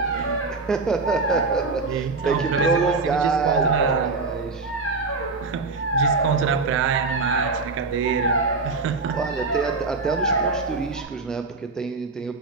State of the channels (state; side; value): quieter; left; 4.0 dB